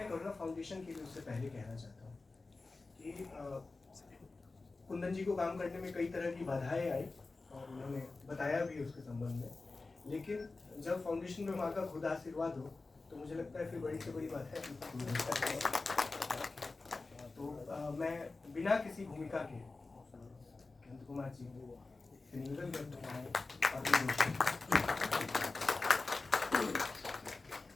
करुणा फाउंडेशन के लिए उससे पहले कहना चाहता हूँ कि कुंदन जी को काम करने में कई तरह की बाधाएं आई और उन्होंने बताया भी उसके संबंध में, लेकिन जब फाउंडेशन में माँ का खुद आशीर्वाद हो तो मुझे लगता है फिर बड़ी से बड़ी बात है। तो मैं बिना किसी भूमिका के अनंत कुमार जी से निवेदन करता हूँ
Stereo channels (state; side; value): quieter; right; 3.6 dB